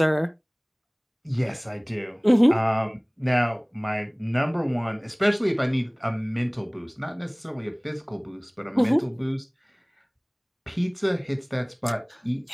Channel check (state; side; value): identical; both; correlation 1.00